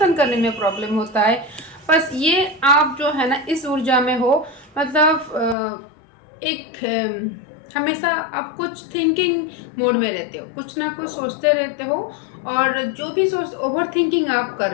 करने में प्रॉब्लम होता है, बस ये आप जो है ना इस ऊर्जा में हो, मतलब हमेशा आप कुछ थिंकिंग मोड में रहते हो, कुछ ना कुछ सोचते रहते हो, और जो भी ओवर थिंकिंग आप कर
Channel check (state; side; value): drops out; right; at 5.6 s